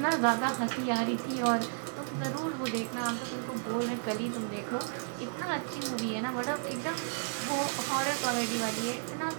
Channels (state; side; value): silent; left; digital silence